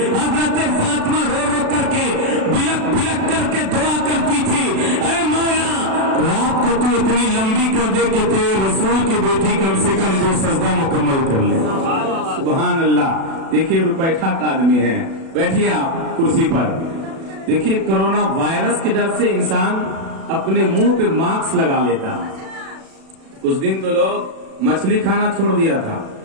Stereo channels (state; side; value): late; left; 36 ms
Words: हजरत फातिमा रो रो करके, बिलक बिलक करके दुआ करती थी, ऐ मौला रात को तू इतनी लंबी कर दे कि तेरे रसूल की बेटी कम से कम 2 सजदा मुकम्मल कर ले। सुभान अल्लाह। देखिए रुपैठा का आदमी है, बैठिए आप कुर्सी पर। देखिए कोरोना वायरस के डर से इंसान अपने मुंह पे मास्क लगा लेता है। कुछ दिन तो लोग मछली खाना छोड़ दिया था,